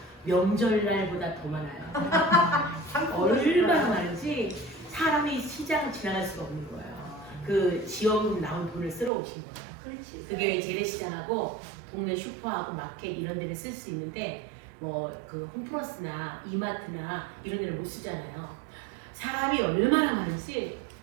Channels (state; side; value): drops out; left; at 9.1 s